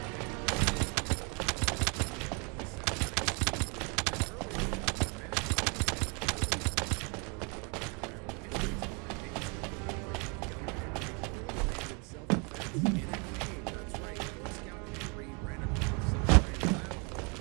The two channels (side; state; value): left; quieter; 32.3 dB